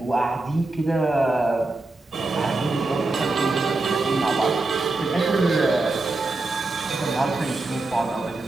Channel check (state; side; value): quieter; left; 3.2 dB